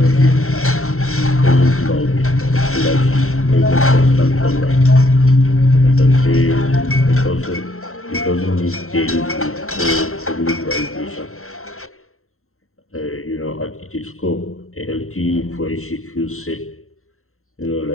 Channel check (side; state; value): right; late; 0.62 ms